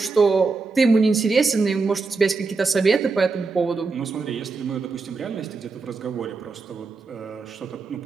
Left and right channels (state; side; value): quieter; left; 4.2 dB